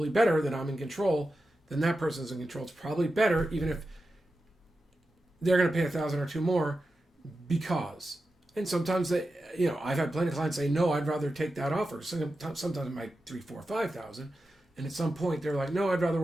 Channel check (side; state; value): both; normal; correlation 0.91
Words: better that I'm in control than that person's in control. It's probably better, even if they're going to pay $1,000 or $2 more, because. And sometimes I've had plenty of clients say, no, I'd rather take that offer. Sometimes it might $3,000, $4,000, $5,000, and at some point they're like, no, I'd rather